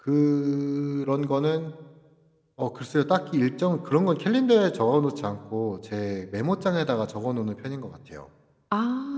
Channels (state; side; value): identical; both; correlation 1.00